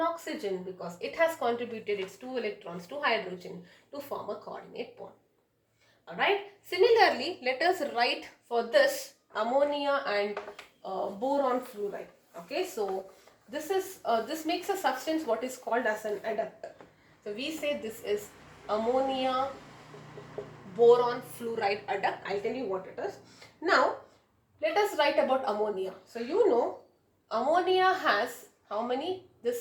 oxygen because it has contributed its 2 electrons to hydrogen to form a coordinate bond. Alright, similarly, let us write for this ammonia and boron fluoride. Okay, so this makes a substance what is called as an adductor. So we say this is ammonia boron fluoride adduct. I'll tell you what it is. Now, let us write about ammonia. So you know, ammonia has how many?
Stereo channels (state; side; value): identical; both; correlation 1.00